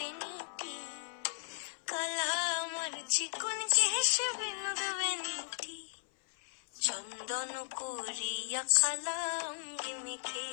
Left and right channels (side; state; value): right; silent; 54 dB below the other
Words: কালা আমার চিকন কেশে বিনোদ বেনিটি। চন্দন করিয়া কালা অঙ্গে